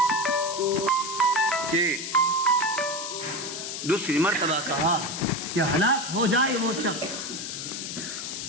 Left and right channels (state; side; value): noise; left; hiss, 6 dB below the sound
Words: کہ دوسری مرتبہ کہا کہ ہلاک ہو جائے وہ شخص